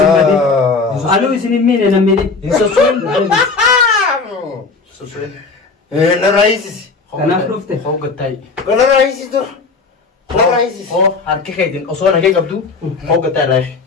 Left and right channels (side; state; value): right; quieter; 4.3 dB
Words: ألو يسنين مين أنا مين من سوسوين سوسوين لا رئيس كنا فروفته هو قتاي لا رئيس دور لا رئيس هو حركي خيدين أصلا هيك قبضو هو قتاي رايح